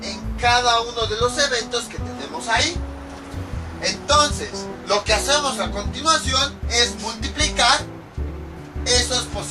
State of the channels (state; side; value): identical; both; correlation 1.00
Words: en cada uno de los eventos que tenemos ahí. Entonces, lo que hacemos a continuación es multiplicar esos